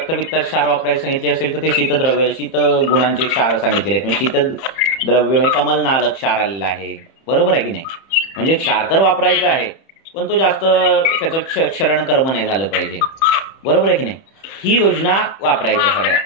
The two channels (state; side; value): late; right; 31 ms